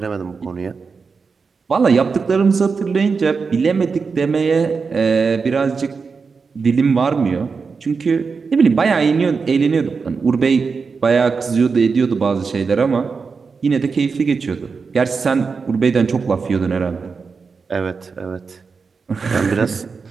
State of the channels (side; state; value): left; quieter; 5.0 dB